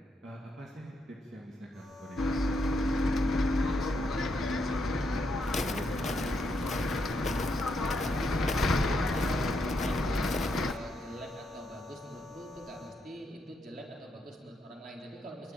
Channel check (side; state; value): both; normal; correlation 0.79